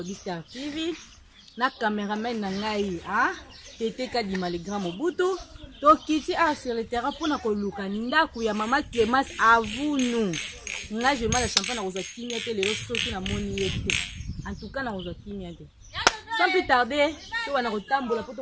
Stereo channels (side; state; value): both; identical; correlation 1.00